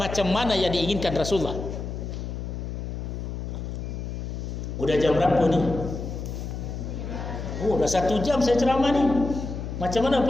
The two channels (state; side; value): noise; left; hum, 6 dB below the sound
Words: mana yang diinginkan Rasulullah. Udah jam berapa ni? Oh, dah 1 jam saya ceramah ni. Macam mana